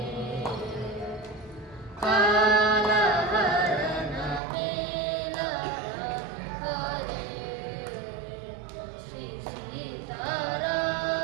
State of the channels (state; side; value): drops out; left; at 4.4 s